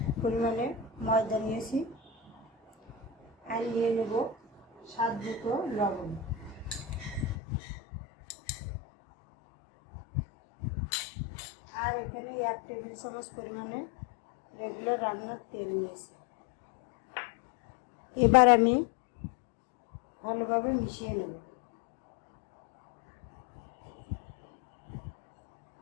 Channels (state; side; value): drops out; right; at 7.4 s